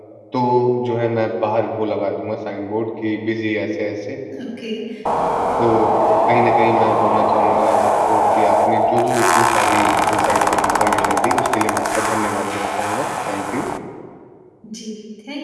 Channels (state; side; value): identical; both; correlation 1.00